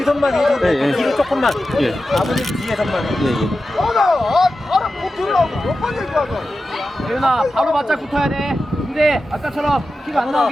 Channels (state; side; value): normal; both; correlation 0.92